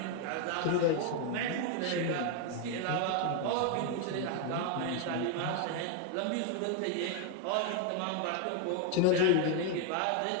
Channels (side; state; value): both; different; correlation 0.01